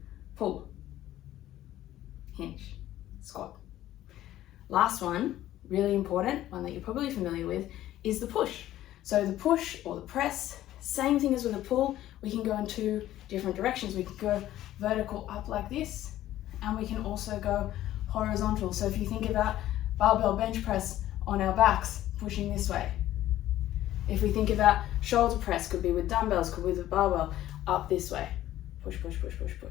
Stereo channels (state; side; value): quieter; right; 13.7 dB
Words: pull, hinge, squat. Last one, really important, one that you're probably familiar with, is the push. So the push or the press, same thing as with a pull, we can go in two different directions. We can go vertical up like this, and we can also go horizontal. So if you think about barbell bench press on our backs, pushing this way. If we think about shoulder press, could be with dumbbells, could be with a barbell, up this way. Push, push, push, push,